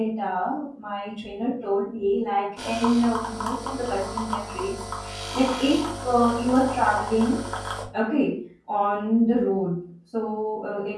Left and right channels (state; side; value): identical; both; correlation 1.00